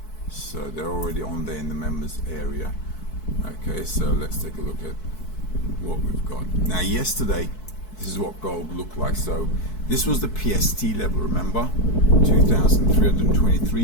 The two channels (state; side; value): late; right; 4.6 ms